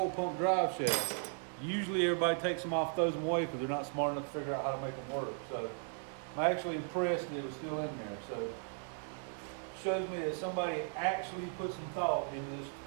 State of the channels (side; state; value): left; silent; 53 dB below the other